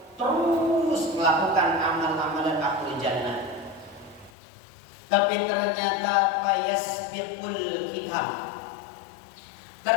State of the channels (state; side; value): drops out; right; at 4.3 s